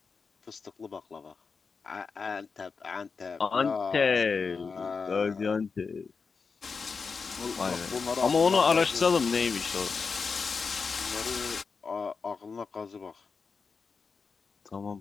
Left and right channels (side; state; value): right; quieter; 5.1 dB